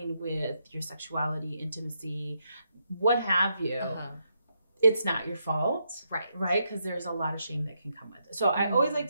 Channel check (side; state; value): both; inverted; correlation -0.80